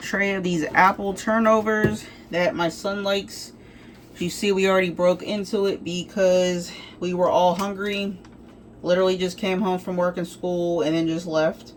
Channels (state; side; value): identical; both; correlation 1.00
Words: of these apple turnovers that my son likes. You see, we already broke into it because we were all hungry. Literally just came home from work and school and then just left.